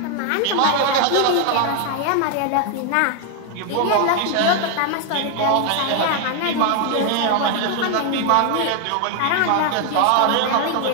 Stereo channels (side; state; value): both; different; correlation 0.01